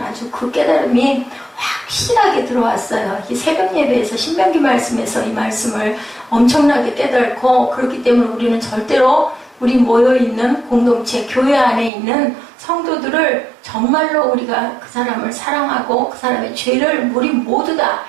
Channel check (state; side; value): drops out; left; at 11.9 s